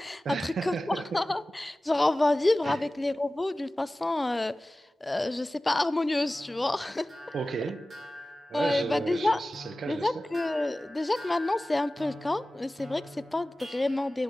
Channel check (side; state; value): both; normal; correlation 0.96